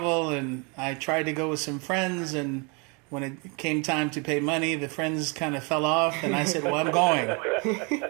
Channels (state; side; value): quieter; left; 31.8 dB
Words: and I tried to go with some friends, and when it came time to pay money, the friends kind of fell off, and I said, well, I'm going.